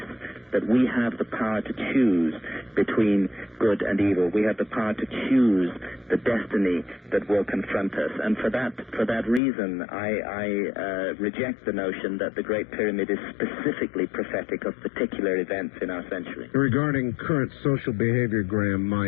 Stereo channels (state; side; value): drops out; right; at 9.4 s